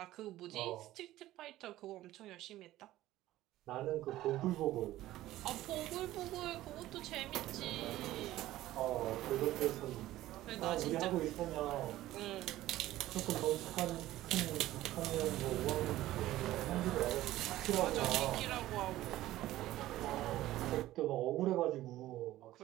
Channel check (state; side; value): quieter; left; 15.3 dB